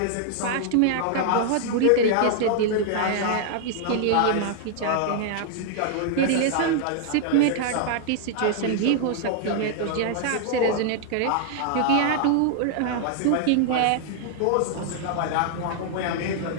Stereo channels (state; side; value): different; both; correlation -0.01